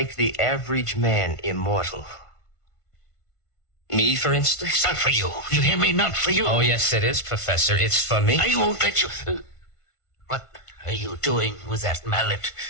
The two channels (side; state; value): right; late; 1.5 ms